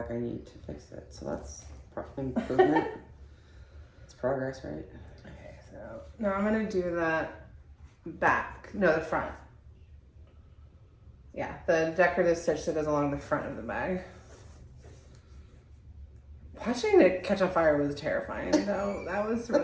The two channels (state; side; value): identical; both; correlation 1.00